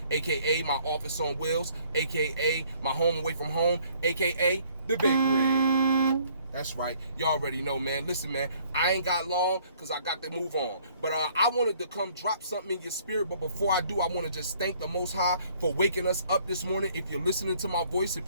aka my office on wheels, aka my home away from home, aka the Big Rig. That's right, you already know, man. Listen, man, I ain't got long because I got to move on. But I wanted to come drop something in your spirit. But before I do, I want to just thank the Most High for waking us up this morning. If you're listening to my voice,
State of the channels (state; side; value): inverted; both; correlation -0.61